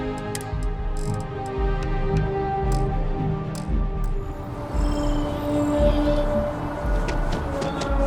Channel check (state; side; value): identical; both; correlation 1.00